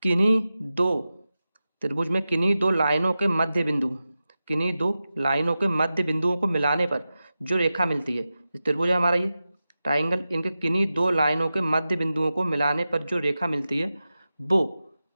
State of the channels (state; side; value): inverted; both; correlation -0.93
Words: किन्हीं दो त्रिभुज में किन्हीं दो लाइनों के मध्य बिंदु, किन्हीं दो लाइनों के मध्य बिंदुओं को मिलाने पर जो रेखा मिलती है, त्रिभुज है हमारा ये ट्राइंगल, इनके किन्हीं दो लाइनों के मध्य बिंदुओं को मिलाने पर जो रेखा मिलती है वो